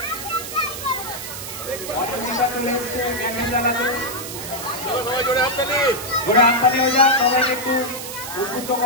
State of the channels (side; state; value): right; noise; hiss, 9 dB below the sound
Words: জোরে হাততালি হয়ে যাক, সবাইকে একটু উদ্বুদ্ধ